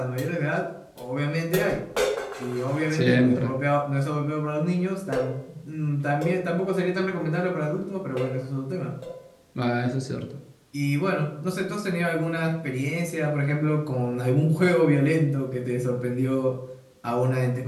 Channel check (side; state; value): both; identical; correlation 1.00